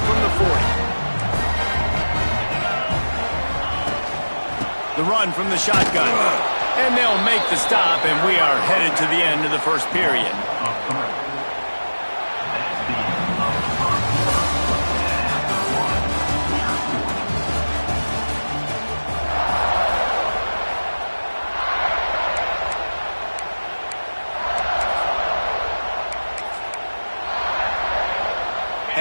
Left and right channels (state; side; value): inverted; both; correlation -1.00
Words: from the 40. The run from the shotgun. And they'll make the stop, and we are headed to the end of the first period.